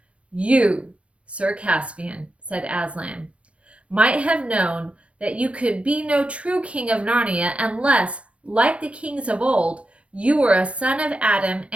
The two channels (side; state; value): left; late; 0.062 ms